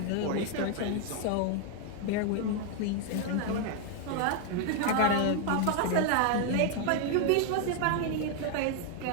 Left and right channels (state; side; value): different; both; correlation 0.00